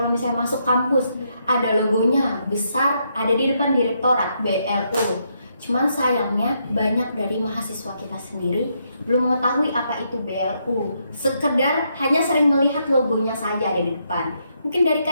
misalnya masuk kampus, ada logonya besar, ada di depan direktorat BLU. Cuman sayangnya banyak dari mahasiswa kita sendiri belum mengetahui apa itu BLU. Sekedar hanya sering melihat logonya saja ada di depan. Mungkin dari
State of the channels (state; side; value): inverted; both; correlation -0.77